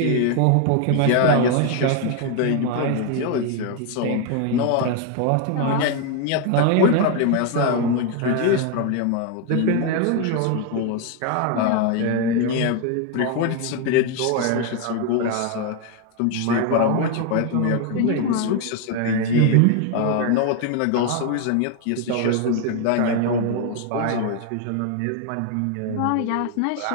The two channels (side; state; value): both; different; correlation 0.01